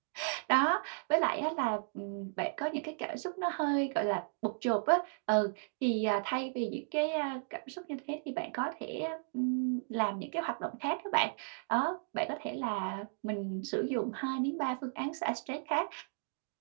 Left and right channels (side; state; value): left; silent; digital silence